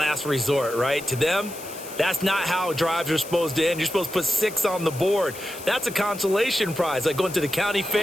resort, right? To them, that's not how drives are supposed to end. You're supposed to put 6 on the board. That's a consolation prize. Like going to the county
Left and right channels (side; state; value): left; noise; hiss, 14 dB below the sound